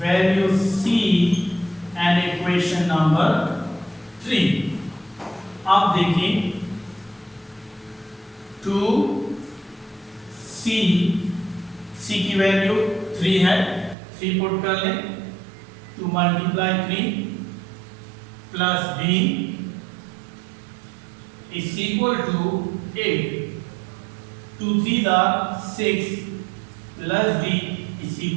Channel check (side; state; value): left; drops out; at 14.0 s